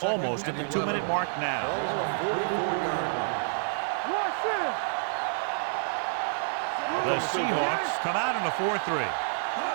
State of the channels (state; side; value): silent; left; 59 dB below the other